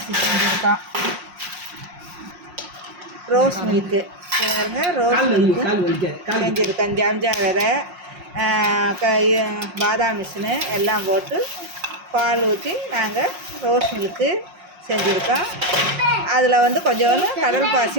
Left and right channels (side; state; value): left; late; 5.6 ms